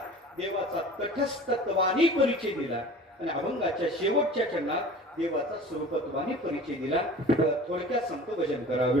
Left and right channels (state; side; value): normal; both; correlation 0.41